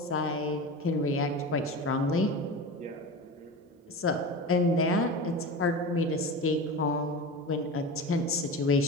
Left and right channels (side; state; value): both; normal; correlation 0.28